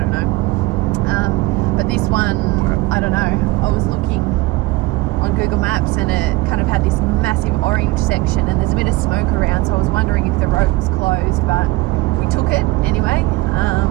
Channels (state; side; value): quieter; left; 20.7 dB